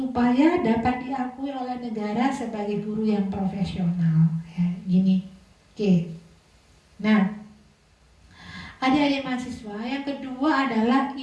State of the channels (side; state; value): both; identical; correlation 1.00